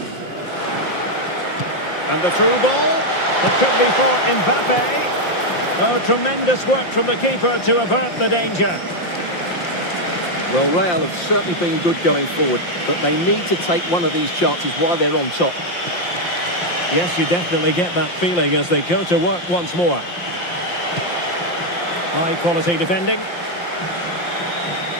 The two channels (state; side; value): late; right; 5.7 ms